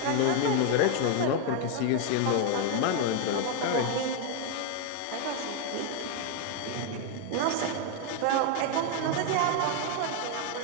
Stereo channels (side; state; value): both; different; correlation 0.01